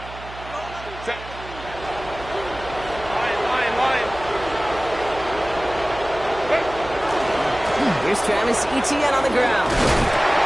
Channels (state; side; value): noise; right; hum, 15 dB below the sound